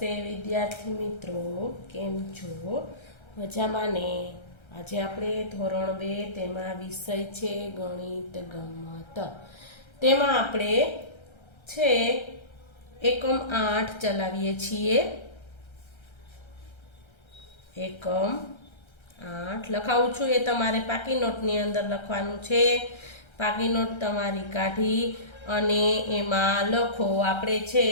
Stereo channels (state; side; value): late; right; 1.3 ms